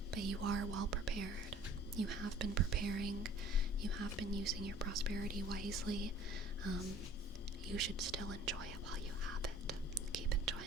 But you are well prepared. You have been preparing. You have been using your prosperity wisely. You should still enjoy it while you have it. Keep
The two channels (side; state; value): both; normal; correlation 0.50